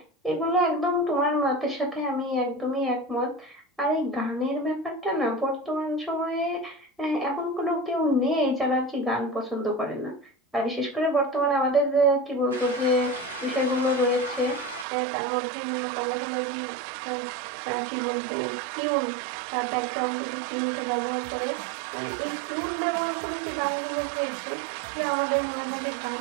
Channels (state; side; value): drops out; left; at 14.9 s